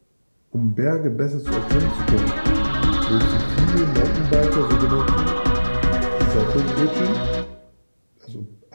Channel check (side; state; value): both; inverted; correlation -1.00